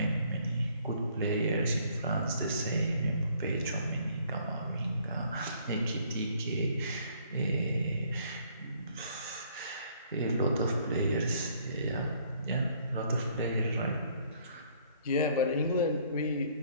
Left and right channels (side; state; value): both; inverted; correlation -0.62